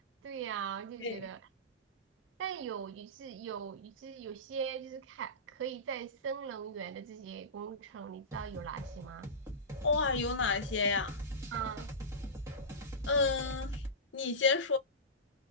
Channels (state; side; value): normal; both; correlation -0.18